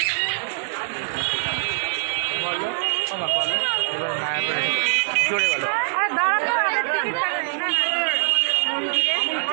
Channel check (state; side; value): silent; left; digital silence